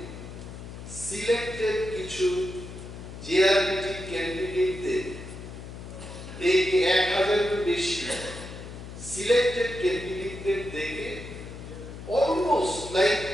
সিলেক্টেড কিছু জিআরপিটি ক্যান্ডিডেটদের দেখে 1000-এর বেশি সিলেক্টেড ক্যান্ডিডেটদের দেখে অলমোস্ট লাইক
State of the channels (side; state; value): left; noise; hum, 12 dB below the sound